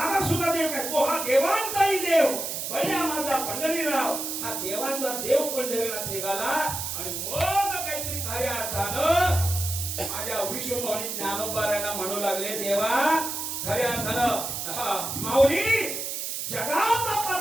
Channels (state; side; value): noise; right; hiss, 4 dB below the sound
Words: सुद्धा देव काय, तो हा देवांचाही देव बळ्या माझा पंढरीराव, हा देवांचा देव पंढरीनाथ निघाला. आणि मग काहीतरी खऱ्या अर्थानं माझ्या विश्वमणी ज्ञानोबारायला म्हणू लागले देवा खऱ्या अर्थानं माऊली जगाचा